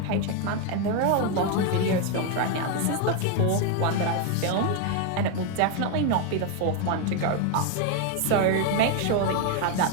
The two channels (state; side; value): different; both; correlation 0.01